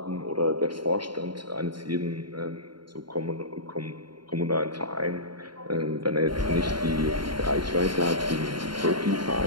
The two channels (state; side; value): late; left; 0.72 ms